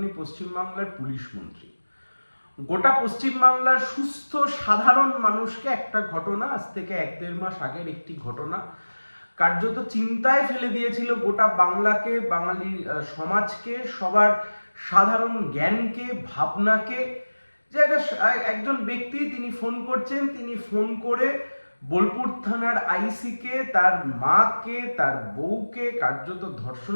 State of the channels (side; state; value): both; inverted; correlation -1.00